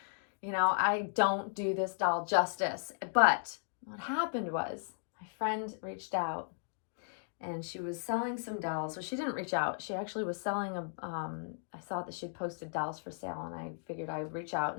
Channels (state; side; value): silent; right; digital silence